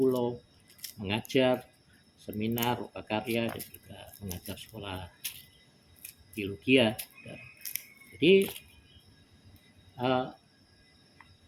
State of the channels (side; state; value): both; identical; correlation 1.00